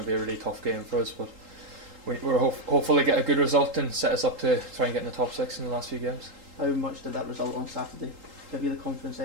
to be a really tough game for us, but we're hopefully get a good result and set us up to try and get in the top 6 in the last few games. How much did that result on Saturday give you the confidence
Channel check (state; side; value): late; left; 3.8 ms